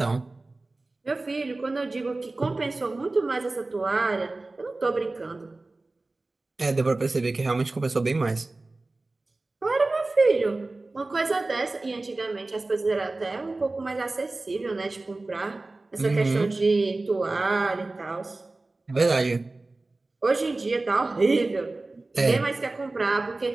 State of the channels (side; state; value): left; quieter; 3.2 dB